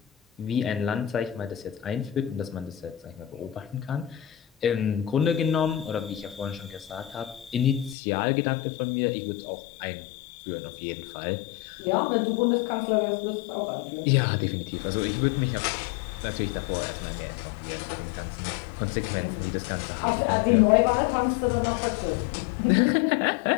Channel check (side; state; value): right; drops out; at 8.0 s